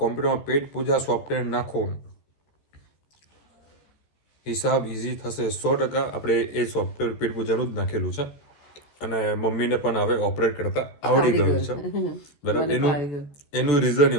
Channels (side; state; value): right; late; 14 ms